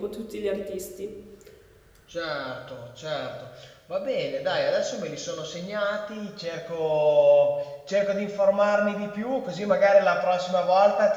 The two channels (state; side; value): identical; both; correlation 1.00